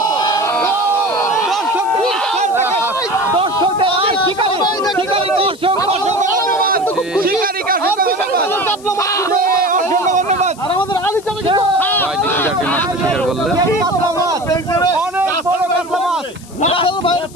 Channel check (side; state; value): left; noise; hiss, 21 dB below the sound